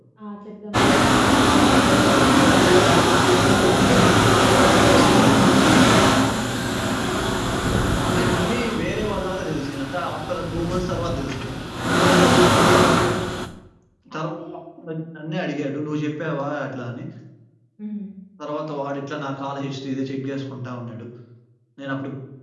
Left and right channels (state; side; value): identical; both; correlation 1.00